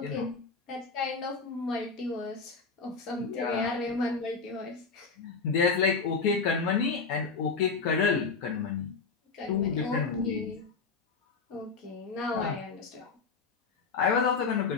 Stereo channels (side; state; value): right; quieter; 4.8 dB